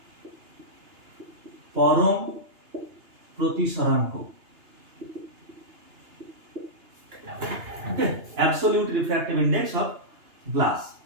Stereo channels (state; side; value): late; left; 2.9 ms